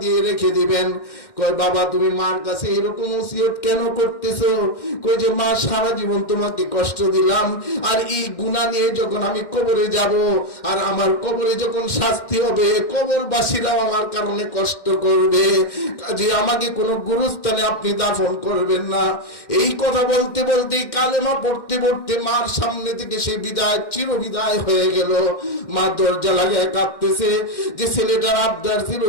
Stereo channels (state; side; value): late; right; 1.6 ms